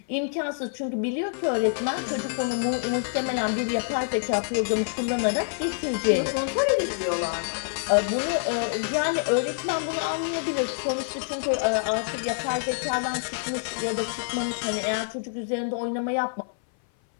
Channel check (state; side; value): silent; right; 56 dB below the other